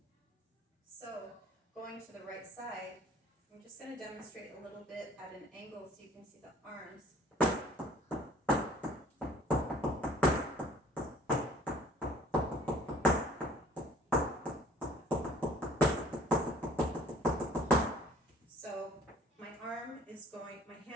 So going to the right side, I'm just going to demonstrate a little bit at an angle so you can see the arms. So my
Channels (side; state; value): both; normal; correlation 0.53